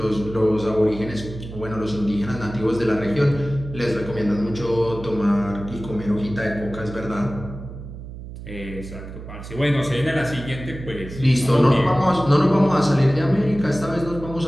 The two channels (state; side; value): noise; right; hum, 12 dB below the sound